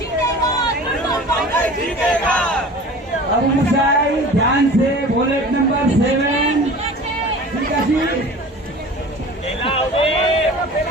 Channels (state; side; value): normal; both; correlation 0.40